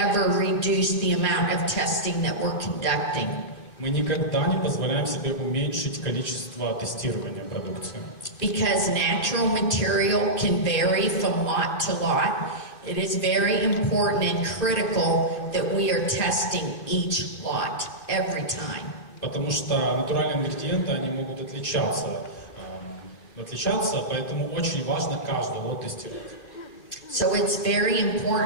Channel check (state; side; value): late; right; 2.6 ms